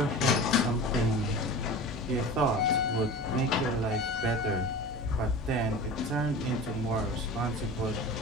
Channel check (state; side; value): normal; both; correlation 0.34